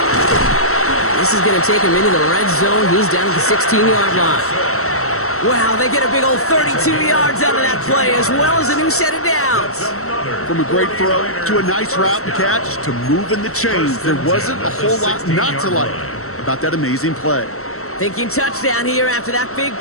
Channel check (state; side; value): late; right; 0.63 ms